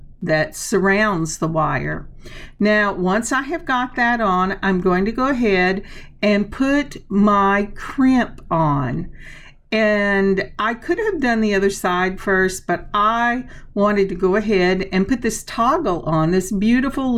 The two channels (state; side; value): identical; both; correlation 1.00